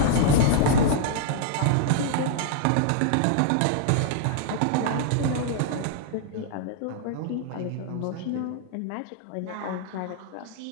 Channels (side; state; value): both; different; correlation -0.01